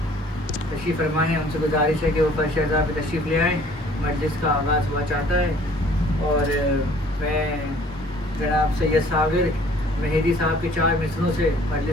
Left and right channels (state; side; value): normal; both; correlation 0.55